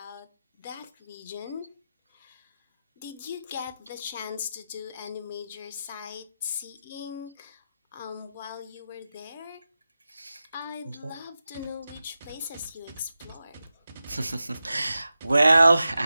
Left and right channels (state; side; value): inverted; both; correlation -0.92